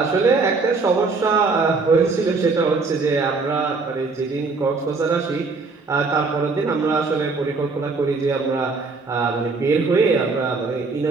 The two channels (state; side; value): quieter; left; 4.1 dB